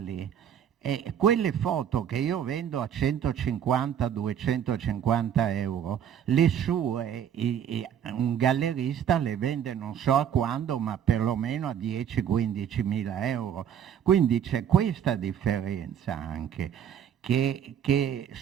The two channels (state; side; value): quieter; left; 9.0 dB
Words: E quelle foto che io vendo a 150-250 euro, le sue, un gallerista le vende non so a quando, ma perlomeno a 10-15 mila euro. Quindi c'è questa differenza anche, che